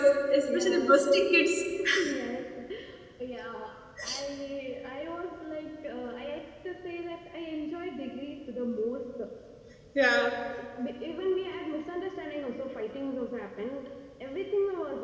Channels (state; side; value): identical; both; correlation 1.00